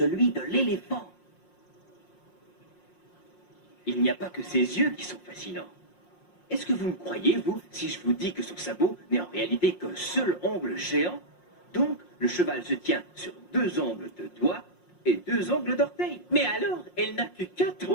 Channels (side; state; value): right; late; 5.6 ms